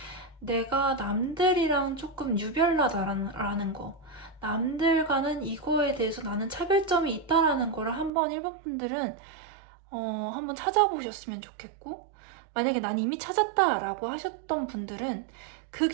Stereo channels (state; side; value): drops out; left; at 8.1 s